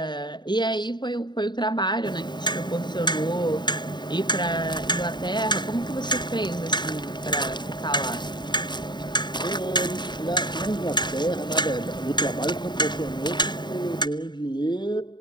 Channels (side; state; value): right; late; 0.21 ms